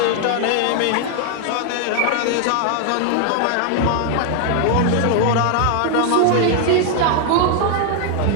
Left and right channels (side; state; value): both; different; correlation 0.00